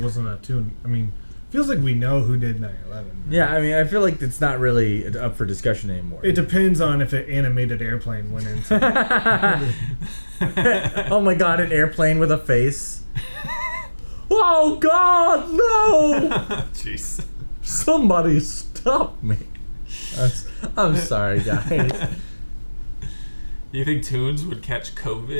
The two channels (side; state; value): both; inverted; correlation -1.00